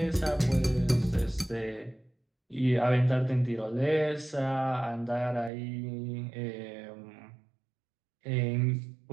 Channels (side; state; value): left; drops out; at 5.5 s